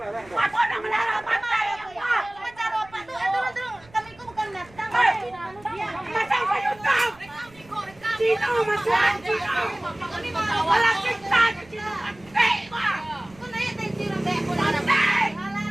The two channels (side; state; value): right; noise; rumble, 25 dB below the sound